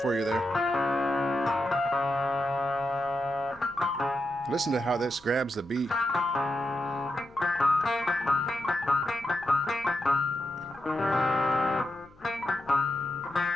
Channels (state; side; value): noise; left; hum, 27 dB below the sound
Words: you there. Listen to how this grabs the beat.